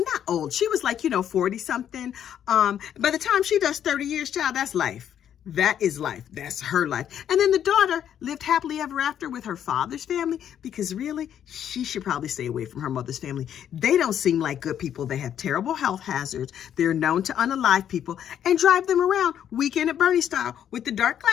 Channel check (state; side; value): quieter; right; 9.7 dB